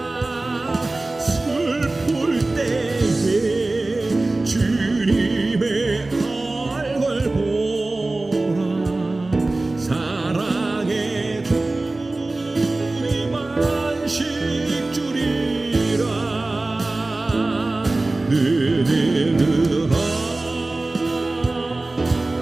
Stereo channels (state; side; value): quieter; left; 3.0 dB